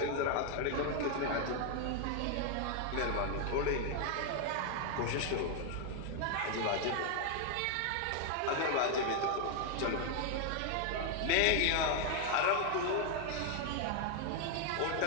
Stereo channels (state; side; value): different; both; correlation 0.00